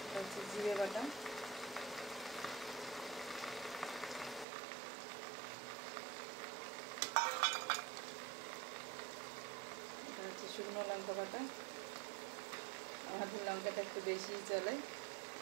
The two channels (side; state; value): left; drops out; at 4.5 s